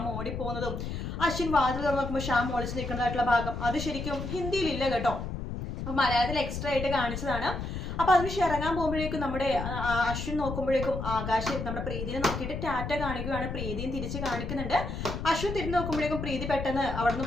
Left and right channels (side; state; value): left; noise; rumble, 5 dB below the sound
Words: ഓടിപ്പോകുന്നതും അശ്വിൻ വാതിൽ തുറന്ന് നോക്കുമ്പോൾ ശ്യാം ഒളിച്ച് നിൽക്കുന്നതായിട്ടുള്ള ഭാഗം അത് ശരിക്കും ഹിന്ദിയിൽ ഇല്ല കേട്ടോ. അപ്പൊ മലയാളത്തിൽ എക്സ്ട്രാ ആയിട്ട് കാണിച്ചതാണ്. അപ്പൊ അതിന് ഇറങ്ങാൻ പോകുമ്പോഴേക്കും നമ്മുടെ അശ്വിൻ നോക്കുമ്പോഴേക്കും ആകാശ് നമ്മുടെ പ്രീതിനെ നോക്കിയിട്ട് ടാറ്റ കാണിക്കുകയാണ്. പ്രീതിയും തിരിച്ച് കാണിക്കുന്നുണ്ട്. അശ്വിൻ തിരിഞ്ഞു നോക്കുമ്പോഴേക്കും പ്രീതി പെട്ടെന്ന് അവിടുന്ന്